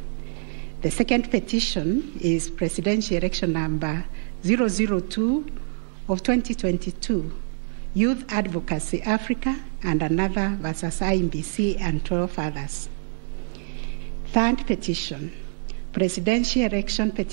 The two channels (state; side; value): silent; left; digital silence